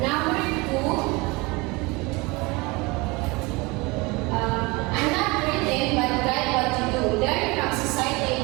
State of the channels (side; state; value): left; quieter; 25.0 dB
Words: 2. I'm not written, but write what you do. Learn from